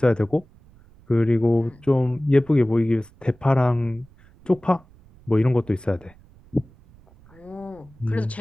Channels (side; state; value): right; noise; rumble, 26 dB below the sound